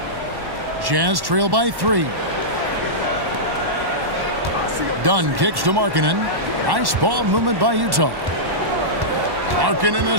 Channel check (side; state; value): left; late; 1.1 ms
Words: Jazz trail by 3. Dunn kicks to Markkanen. Nice ball movement by Utah. Markkanen a